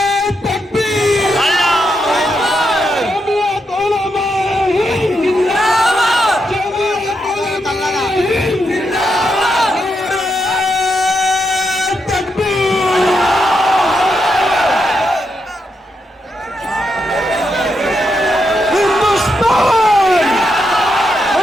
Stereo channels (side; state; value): both; normal; correlation 0.82